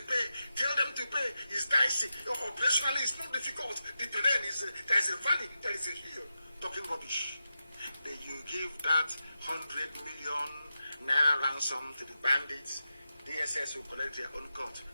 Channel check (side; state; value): both; inverted; correlation -0.90